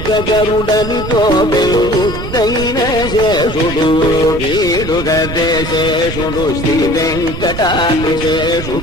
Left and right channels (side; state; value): right; noise; rumble, 7 dB below the sound